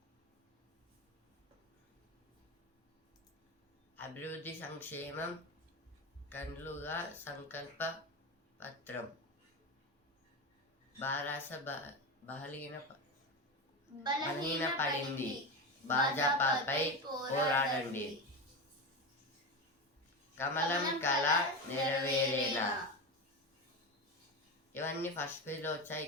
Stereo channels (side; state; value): both; normal; correlation 0.19